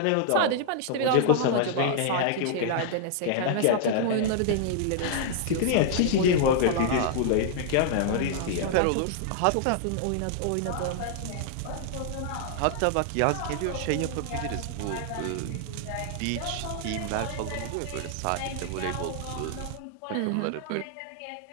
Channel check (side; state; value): both; different; correlation -0.01